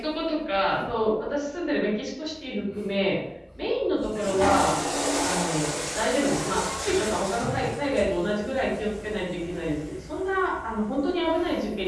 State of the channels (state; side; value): identical; both; correlation 1.00